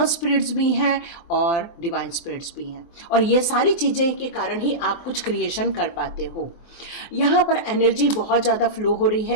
स्पिरिट्स भी हैं और डिवाइन स्पिरिट्स भी हैं, और ये सारी चीज़ें के कारण ही आप कुछ क्रिएशन कर पाते हो। यहाँ पर एनर्जी बहुत ज़्यादा फ्लो हो रही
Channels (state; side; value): late; right; 23 ms